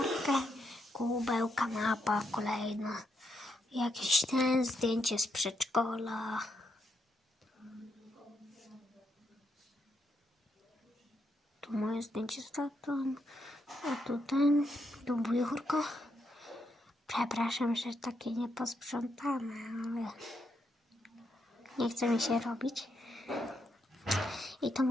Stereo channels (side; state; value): both; normal; correlation 0.79